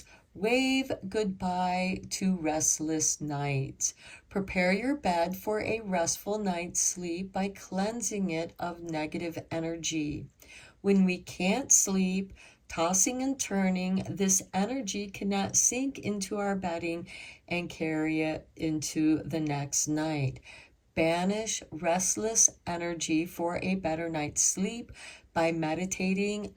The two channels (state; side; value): identical; both; correlation 1.00